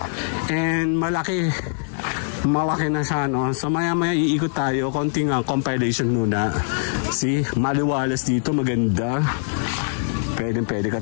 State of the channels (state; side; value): silent; right; digital silence